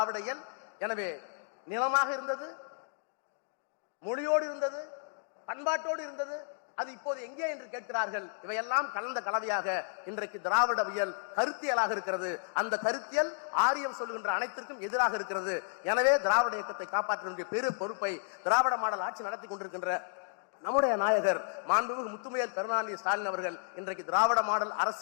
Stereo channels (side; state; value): right; silent; digital silence